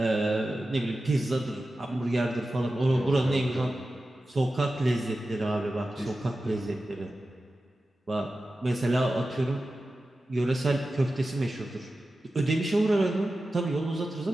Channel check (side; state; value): both; normal; correlation 0.94